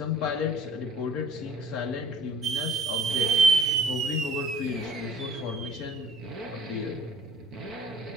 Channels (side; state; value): both; normal; correlation 0.53